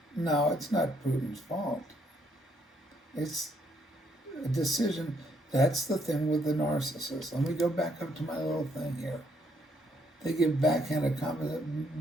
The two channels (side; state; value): both; normal; correlation 0.71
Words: No, it's not Putin's fault. It's a decision. That's the thing with the narcissist. Let me go back up to my little thing here. They give backhanded compliments.